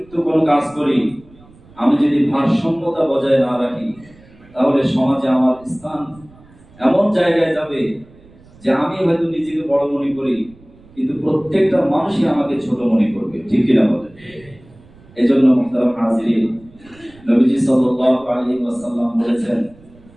কোনো কাজ করি, আমি যদি ভারসাম্যতা বজায় না রাখি, তাহলে সমাজে আমার স্থান এমন জায়গায় যাবে যে আমি হয়তো নিজেকে বড় মনে করি, কিন্তু প্রত্যেকটা মানুষই আমাকে ছোট মনে করবে, ঠিক কিনা বলেন? এজন্য মুহতারাম হাজিরিন, নবীজি সাল্লাল্লাহু আলাইহি ওয়াসাল্লাম বলেছেন,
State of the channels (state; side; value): noise; right; rumble, 25 dB below the sound